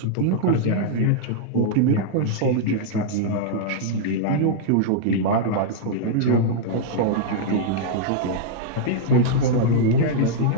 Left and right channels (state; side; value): different; both; correlation -0.01